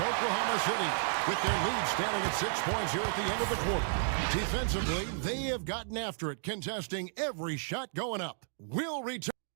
City with their lead standing at 6 points here at the end of the quarter. Defensively, they have gotten after it, contesting every shot going up. We'll return.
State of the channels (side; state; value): left; silent; digital silence